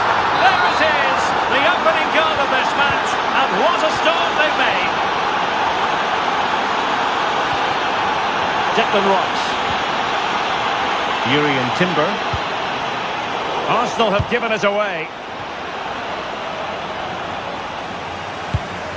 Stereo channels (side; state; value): both; identical; correlation 1.00